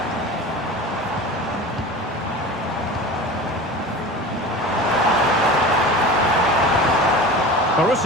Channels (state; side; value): normal; both; correlation 0.34